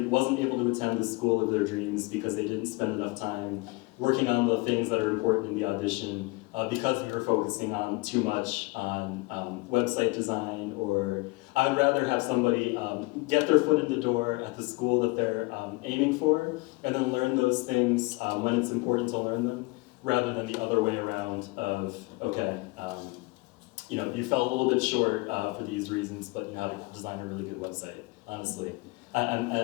wasn't able to attend the school of their dreams because they didn't spend enough time working on the things that are important in the audition because we were focusing on too much on website design, or I'd rather have somebody get their foot in the door at the school that they're aiming for and then learn those things when it's important to learn them, rather than the other way around of, okay, you know, you fell a little bit short for these reasons, but you know how to design a really good website, honestly.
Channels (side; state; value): right; quieter; 25.4 dB